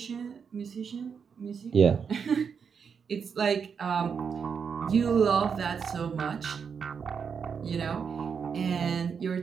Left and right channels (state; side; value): quieter; left; 6.5 dB